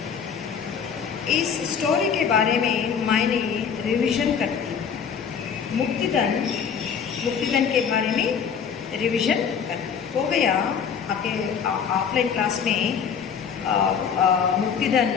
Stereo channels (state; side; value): quieter; right; 7.0 dB